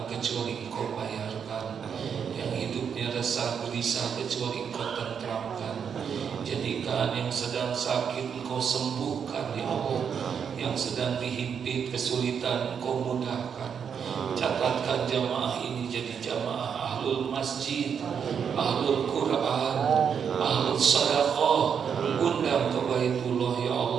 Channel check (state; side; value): quieter; left; 7.2 dB